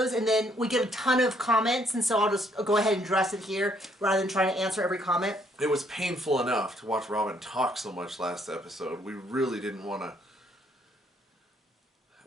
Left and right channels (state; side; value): normal; both; correlation 0.68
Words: and then we get a ton of comments, and so I'll just go ahead and address it here, rather than trying to answer every comment. It was painful enough to watch Robin talk so much last episode. We really didn't want to